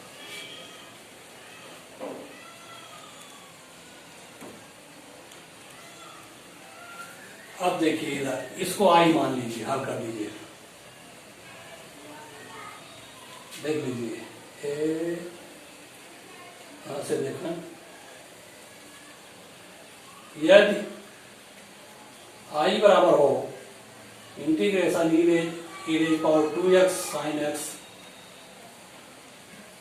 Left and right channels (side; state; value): both; identical; correlation 1.00